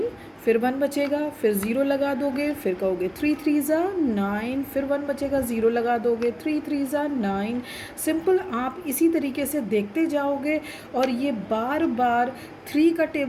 फिर 1 बचेगा, फिर 0 लगा दोगे, फिर कहोगे 3 3 जा 9, फिर 1 बचेगा, 0 लगा दोगे, 3 3 जा 9। सिंपल, आप इसी तरीके से देखते जाओगे और ये बार बार 3 का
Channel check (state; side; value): identical; both; correlation 1.00